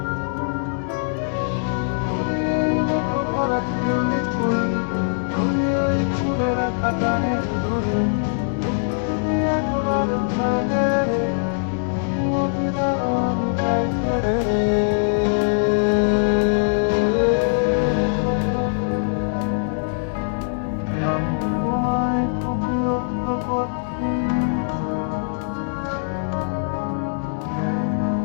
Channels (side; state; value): right; silent; 64 dB below the other